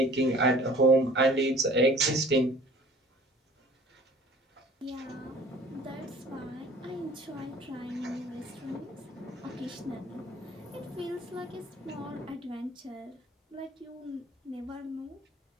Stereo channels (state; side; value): normal; both; correlation 0.50